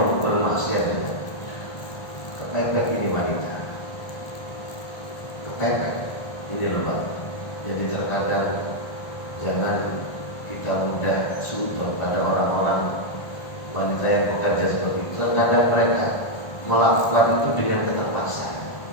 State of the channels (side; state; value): right; late; 1.5 ms